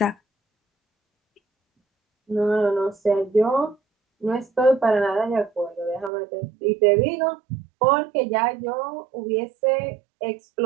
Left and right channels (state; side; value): drops out; left; at 6.1 s